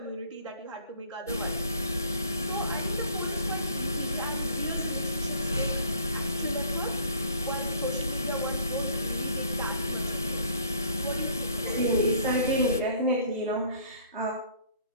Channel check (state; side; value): inverted; both; correlation -0.56